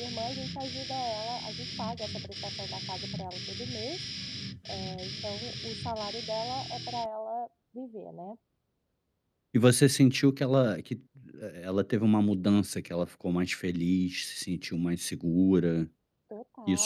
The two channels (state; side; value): identical; both; correlation 1.00